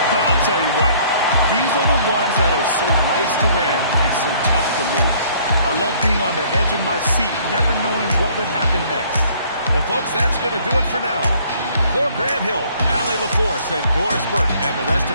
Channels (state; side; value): inverted; both; correlation -0.59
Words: I'll tell you what, These are the ones that are so nice to win and so tough to lose. I love being on the edge of my seat, never knowing what would happen next. Well, folks, that's going to do it for now. For Grant Hill, Allie LaForce, and Doris Burke, and the rest